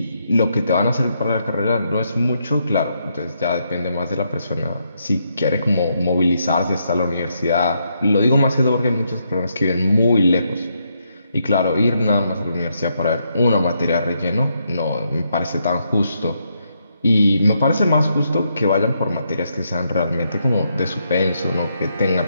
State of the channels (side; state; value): both; inverted; correlation -0.78